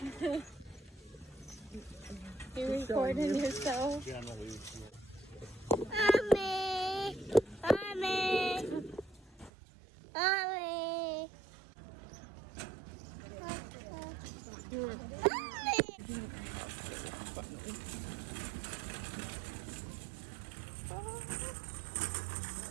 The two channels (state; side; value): drops out; left; at 9.5 s